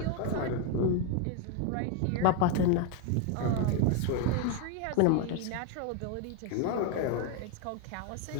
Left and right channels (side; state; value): both; different; correlation 0.01